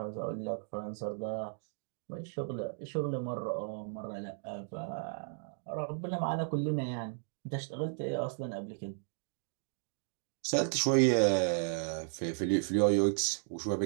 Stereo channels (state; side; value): silent; left; digital silence